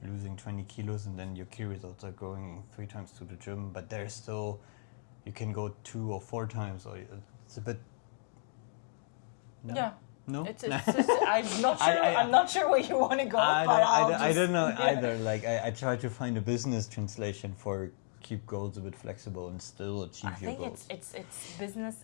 losing 20 kilos, and then your key results are going 3 times to the gym, but there's still, you can go 2 or 4 times, or it's a bit. No? Yeah. No, It's I'm not sure. I'm not sure where you want to go, I don't know either. Like, I try to find a business translation for keep goals a bit flexible and still achieve your goals. I think it's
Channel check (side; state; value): right; silent; 55 dB below the other